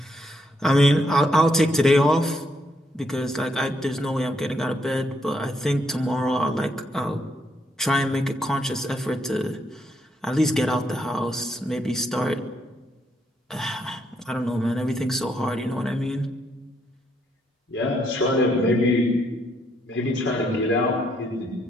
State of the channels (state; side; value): normal; both; correlation 0.75